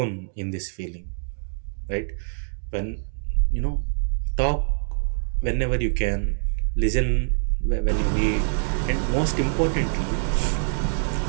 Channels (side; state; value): left; silent; digital silence